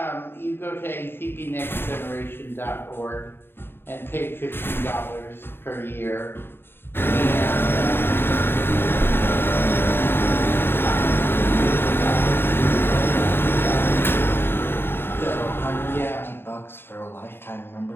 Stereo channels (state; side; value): late; right; 0.11 ms